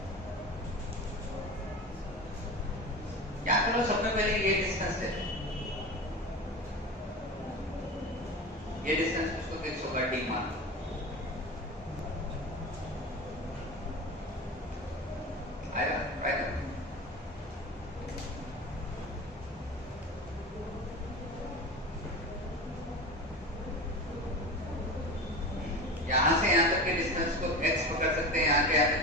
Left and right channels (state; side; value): normal; both; correlation 0.29